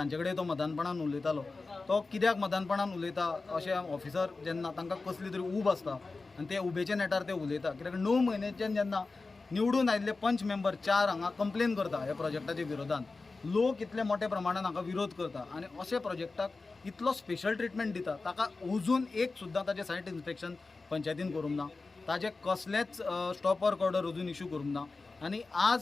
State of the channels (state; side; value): quieter; right; 3.8 dB